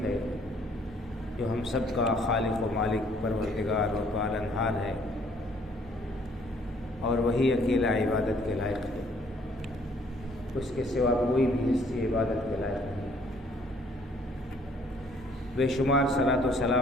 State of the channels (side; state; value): both; normal; correlation 0.62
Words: ہے، جو ہم سب کا خالق و مالک پروردگار و پالنہار ہے، اور وہی اکیلا عبادت کے لائق ہے، اس کے سوا کوئی بھی ہستی عبادت کے لائق نہیں۔ بے شمار صلاۃ و